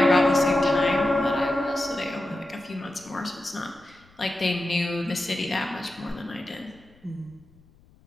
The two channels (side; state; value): left; noise; rumble, 29 dB below the sound